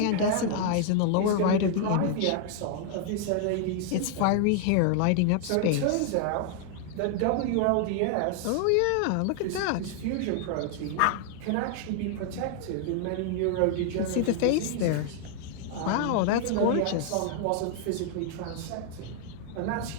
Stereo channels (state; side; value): different; both; correlation 0.00